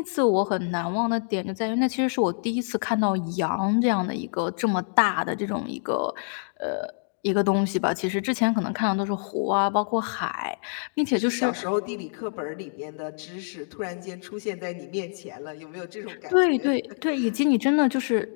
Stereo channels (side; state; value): right; silent; digital silence